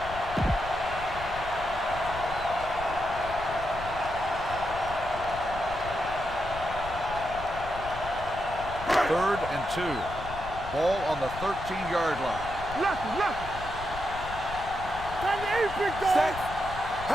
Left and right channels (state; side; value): noise; left; rumble, 11 dB below the sound